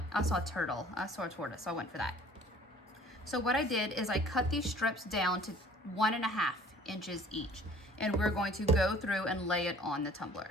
I saw a turtle. I saw a tortoise, so I went for that. So what I did is I cut these strips down to 1.5 inches each, and we're going to go through and lay it on the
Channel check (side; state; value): both; normal; correlation 0.51